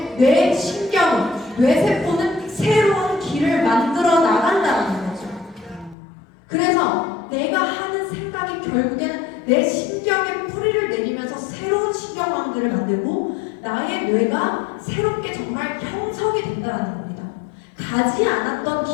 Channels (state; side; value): drops out; right; at 6.0 s